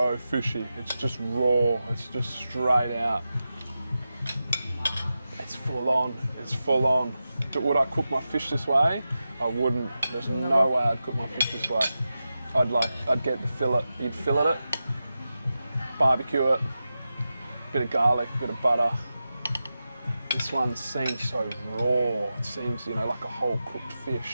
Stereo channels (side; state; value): both; inverted; correlation -0.92